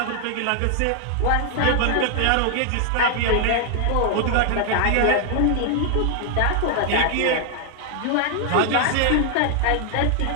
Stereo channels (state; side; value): different; both; correlation 0.00